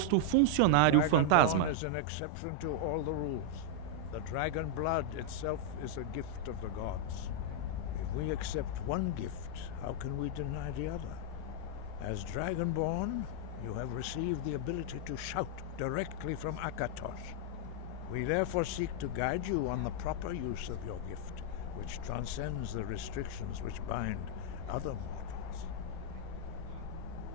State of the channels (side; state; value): both; different; correlation -0.01